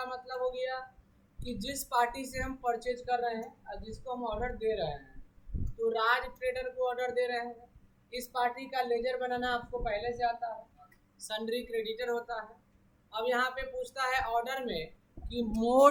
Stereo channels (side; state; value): both; identical; correlation 1.00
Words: मतलब हो गया कि जिस पार्टी से हम परचेज कर रहे हैं और जिसको हम ऑर्डर दे रहे हैं, तो राज ट्रेडर को ऑर्डर दे रहे हैं, इस पार्टी का लेजर बनाना आपको पहले से आता है, सन्ड्री क्रेडिटर होता है। अब यहाँ पे पूछता है ऑर्डर में कि